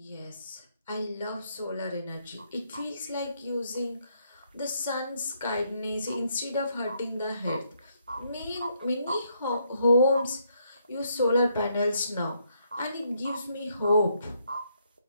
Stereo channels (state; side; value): inverted; both; correlation -0.74